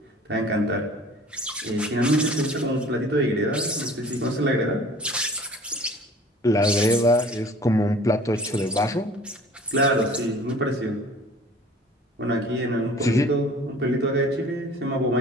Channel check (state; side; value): normal; both; correlation 0.47